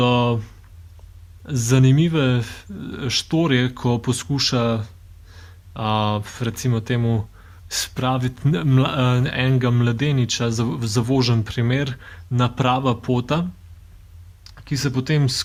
zanimive štorije, ko poskuša recimo temu spraviti enega mladeniča, zavožen primer, na prava pota, ki se potem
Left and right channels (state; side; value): identical; both; correlation 1.00